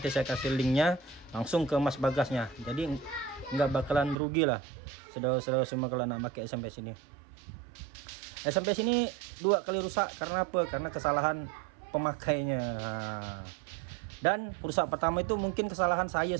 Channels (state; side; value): drops out; left; at 4.2 s